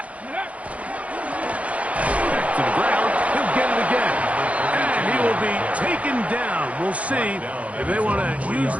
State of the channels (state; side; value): late; left; 0.065 ms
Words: it. Back to the ground. He'll get it again. And he will be taken down. We'll see if they want to use